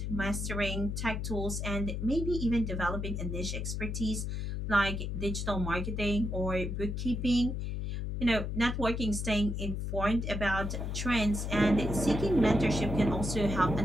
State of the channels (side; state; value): left; noise; hum, 3 dB below the sound